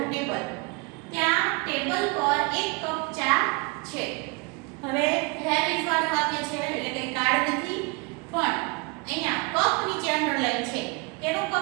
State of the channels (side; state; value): left; quieter; 29.0 dB